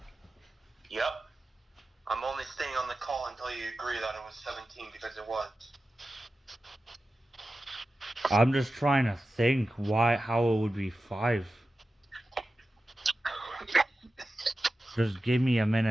Yep. I'm only staying on the call until you agree that it was 17 because it was. I'm just trying to think how it would be 5. Just give me a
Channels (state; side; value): normal; both; correlation 0.93